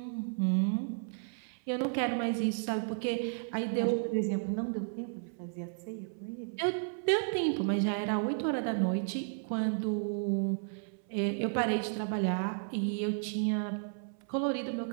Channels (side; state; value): left; silent; 56 dB below the other